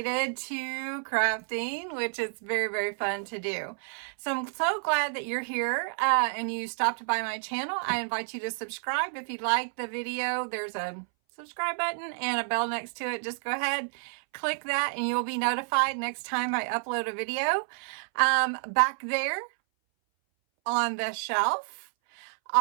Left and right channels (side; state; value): left; silent; 58 dB below the other